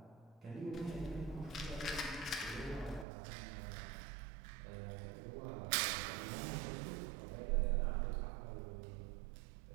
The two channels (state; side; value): drops out; left; at 3.1 s